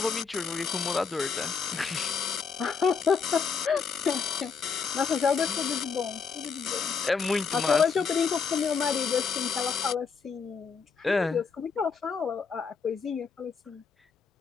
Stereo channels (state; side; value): quieter; right; 5.6 dB